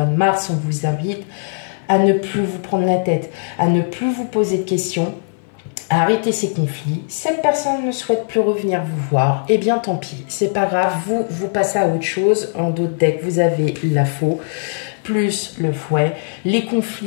de mars, on vous invite à ne plus vous prendre la tête, à ne plus vous poser de questions, à arrêter ces conflits. Cette personne ne souhaite plus revenir vous voir, eh bien tant pis, c'est pas grave, vous passez à autre chose. En d'autres decks, vous avez la faux, plus le fouet. Les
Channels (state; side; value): silent; right; 59 dB below the other